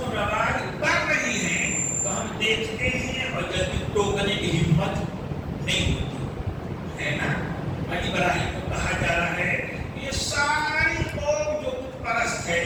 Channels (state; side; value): identical; both; correlation 1.00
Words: رواج کر رہی ہیں تو ہم دیکھتے ہیں اور جلدی ٹوکنے کی ہمت نہیں ہوتی ہے نا۔ ابراہیم کو کہا جا رہا ہے یہ ساری قوم جو بت پرست